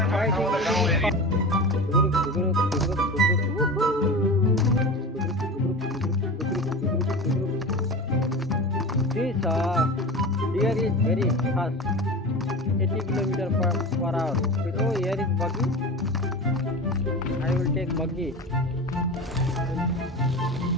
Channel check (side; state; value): both; normal; correlation 0.30